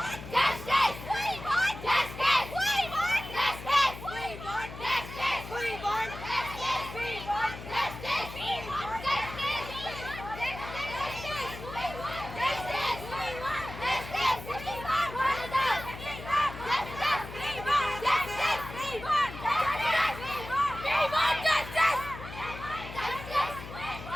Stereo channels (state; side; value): noise; left; hum, 12 dB below the sound